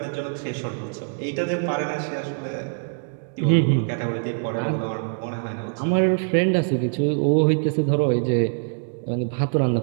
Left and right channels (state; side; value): silent; left; digital silence